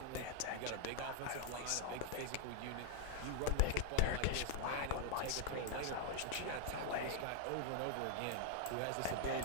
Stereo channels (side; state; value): both; different; correlation 0.00